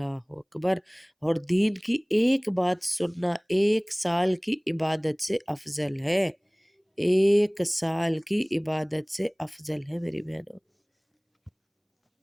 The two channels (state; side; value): identical; both; correlation 1.00